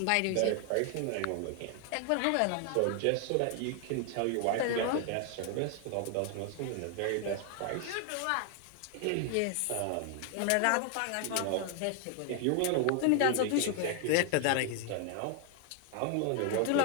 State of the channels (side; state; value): both; different; correlation 0.00